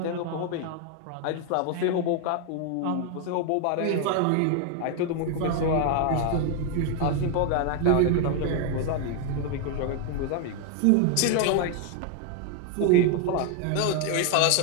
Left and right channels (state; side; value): different; both; correlation 0.01